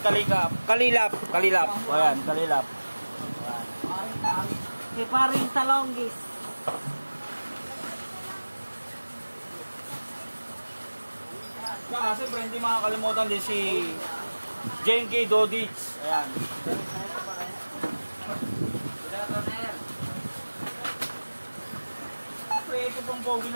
Kalilap. Ayan, Kalilap. Si paring Talonggis. Saka siyempre, hindi makakalimutan din si Jane K. Dodich. Ayan. Siyempre, ito pong pogi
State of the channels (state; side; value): inverted; both; correlation -1.00